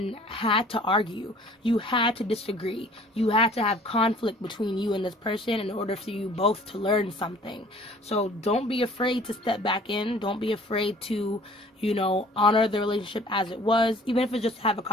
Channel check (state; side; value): normal; both; correlation 0.52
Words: had to argue. You had to disagree. You had to have conflict between you and this person in order for you both to learn something. So don't be afraid to step back in. Don't be afraid to, you know, honor the relationship as it was, even if it's just to have a